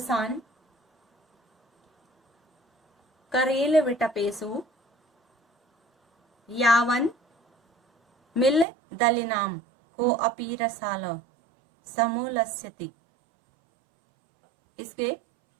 करेल विटपेसु यावन मिल दलिनाम को अपी रसाल समूलस्यति। इसके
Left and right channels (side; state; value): left; drops out; at 8.7 s